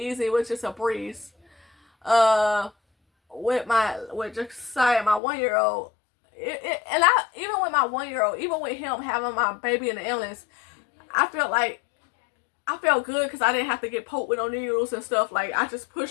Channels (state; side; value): drops out; right; at 5.2 s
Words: It was just a breeze. With Josiah, my 1-year-old, and even with my 1-year-old, even with him having my baby in the illness, I felt good because I didn't have to get poked with no needles and stuff. Like, I just